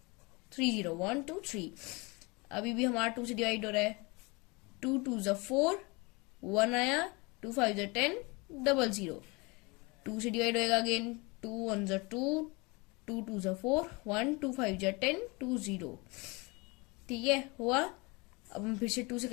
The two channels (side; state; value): right; quieter; 27.0 dB